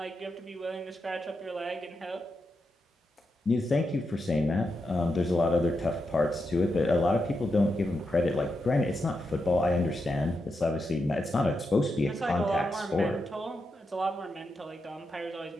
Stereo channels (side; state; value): both; normal; correlation 0.86